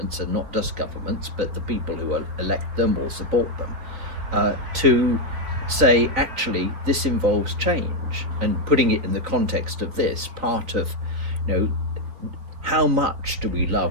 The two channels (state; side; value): late; left; 3.9 ms